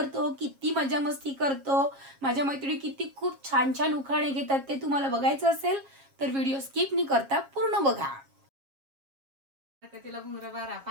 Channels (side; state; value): left; late; 7.4 ms